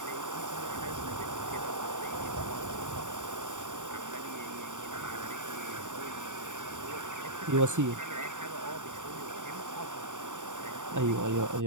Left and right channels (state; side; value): late; left; 0.86 ms